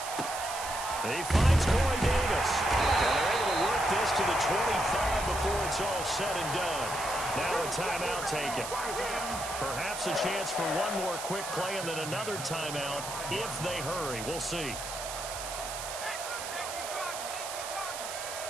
He finds Corey Davis. And they're able to work this to the 25 before it's all said and done. Now a timeout taken. Perhaps a chance for one more quick play and then another timeout if they hurry. We'll see.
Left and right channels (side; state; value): right; noise; hiss, 7 dB below the sound